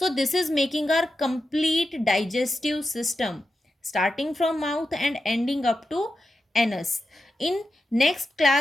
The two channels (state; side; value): normal; both; correlation 0.90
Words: this is making our complete digestive system starting from mouth and ending up to anus. In next